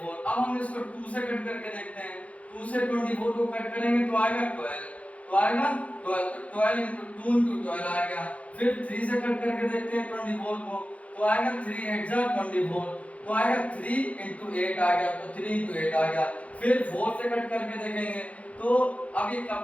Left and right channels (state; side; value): late; right; 0.066 ms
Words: अब हम इसको 2 से कट करके देखते हैं। 2 से 24 को कट करेंगे तो आएगा 12, तो आएगा 12, तो 12 into 2 into 12 आएगा। फिर 3 से कट करके देखते हैं 24 को, तो आएगा 3 8 जा 24, तो आएगा 3 into 8 आ गया, तो 3 into 8 आ गया। फिर 4 से कट करके देखेंगे तो अब ये